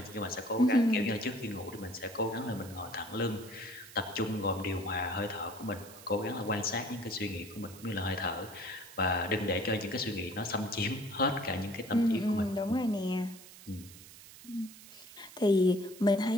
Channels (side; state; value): right; noise; hiss, 18 dB below the sound